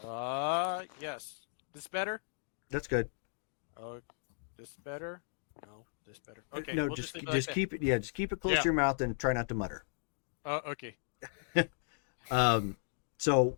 Yes. This better? That's good. Oh, this better? No, this better. Okay. No, we'll just leave it like that. keep it. Yeah, just keep it close Yeah. to your mouth and try not to mutter. Oh, okay. So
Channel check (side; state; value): right; silent; digital silence